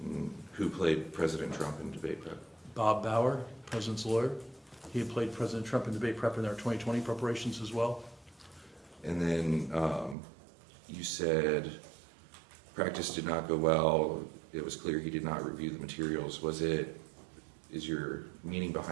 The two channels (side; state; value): left; drops out; at 10.2 s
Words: Who played President Trump in debate prep? Bob Bauer, President's lawyer. He had played President Trump in debate prep in their 2020 preparations as well. And then you said practice did not go well. It was clear he did not review the materials. Is your meaning